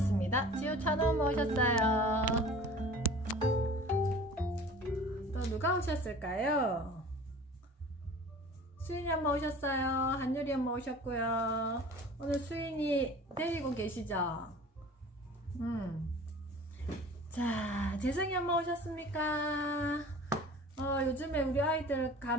지우 찬원 오셨어요. 또 누가 오셨을까요? 수인이 엄마 오셨어요. 한유리 엄마 오셨고요. 오늘 수인이 데리고 계시죠? 자, 재성이 엄마 오셨습니까? 요즘에 우리 아이들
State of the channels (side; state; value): both; normal; correlation 0.43